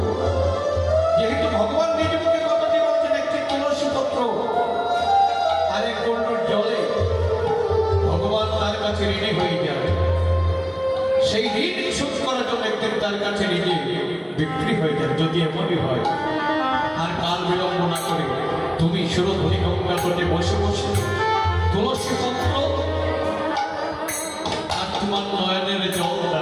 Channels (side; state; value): both; identical; correlation 1.00